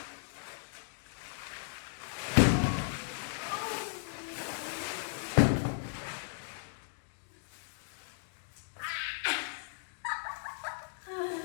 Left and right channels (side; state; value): right; silent; digital silence